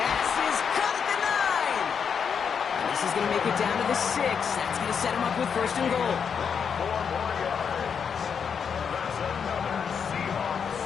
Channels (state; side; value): quieter; right; 6.8 dB